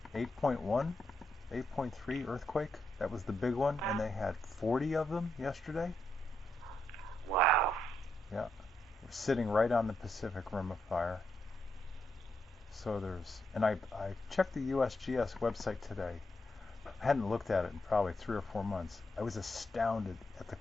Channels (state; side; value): normal; both; correlation 0.81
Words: 8.1 8.3 earthquake. That was the big one, and they had 40 of them yesterday. Wow. Yeah. We're sitting right on the Pacific Rim of Fire. So and I checked the USGS website today. I hadn't looked at it in probably 3 or 4 months. I was astounded at the